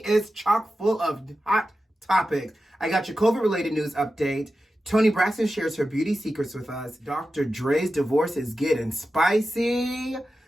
chock full of hot topics. I got your COVID-related news update. Toni Braxton shares her beauty secrets with us. DR.DRE's divorce is getting spicy.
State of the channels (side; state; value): both; normal; correlation 0.92